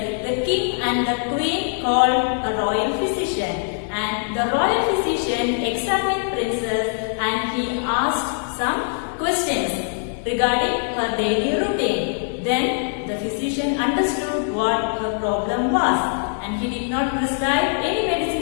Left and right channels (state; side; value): silent; right; digital silence